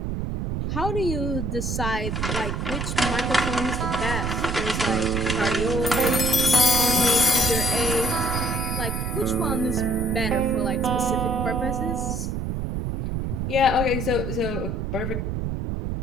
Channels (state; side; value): noise; right; rumble, 2 dB below the sound